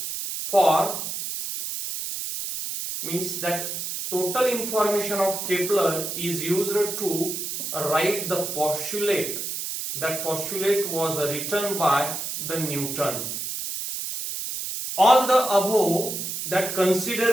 for means that total information of Kepler is used to write the postulate. That postulate was written by the Newton. All the above that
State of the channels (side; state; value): right; noise; hiss, 4 dB below the sound